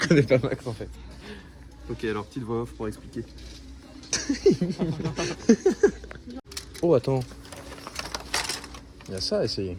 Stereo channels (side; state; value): both; identical; correlation 1.00